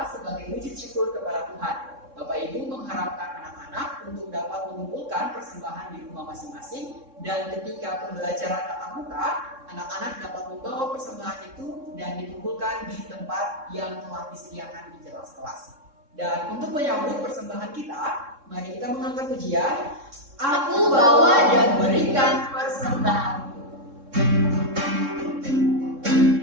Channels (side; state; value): left; late; 3.6 ms